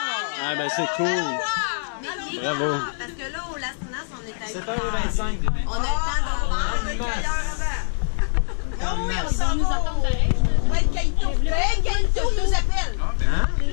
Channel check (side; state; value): right; silent; 63 dB below the other